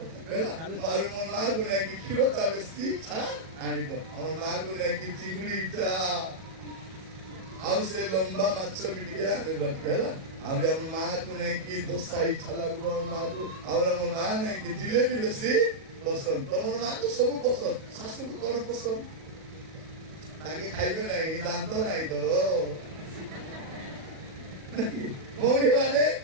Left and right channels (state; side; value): late; left; 37 ms